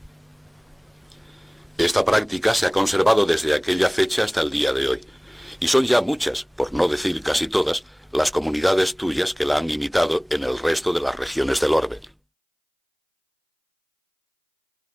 Esta práctica se ha conservado desde aquella fecha hasta el día de hoy, y son ya muchas, por no decir casi todas, las comunidades tuyas que la han imitado en el resto de las regiones del orbe.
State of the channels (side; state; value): both; identical; correlation 1.00